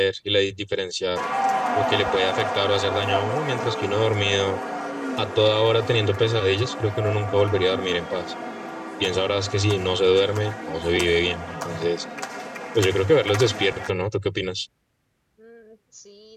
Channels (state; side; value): identical; both; correlation 1.00